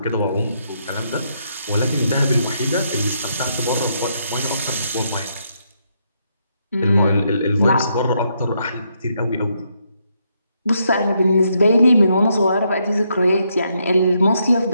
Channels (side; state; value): both; inverted; correlation -0.77